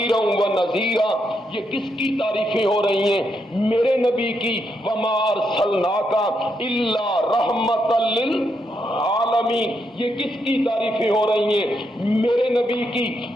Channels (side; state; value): both; normal; correlation 0.80